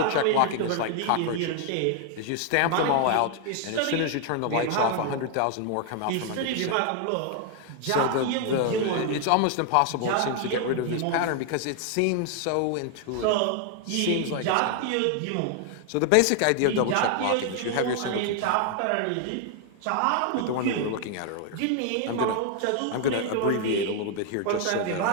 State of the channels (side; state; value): both; different; correlation 0.00